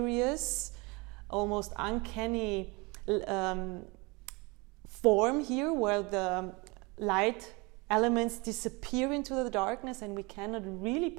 almost uncanny form here, where the light elements disappear into the darkness and we cannot really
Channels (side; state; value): left; quieter; 27.0 dB